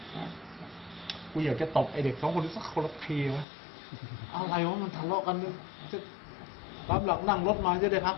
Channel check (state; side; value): drops out; right; at 3.5 s